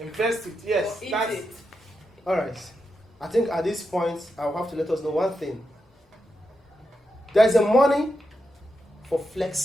invest it. Yes, Or eat that's it. All right. I think at this point, I'll have to let us know one thing. There's a money for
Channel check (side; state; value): both; normal; correlation 0.86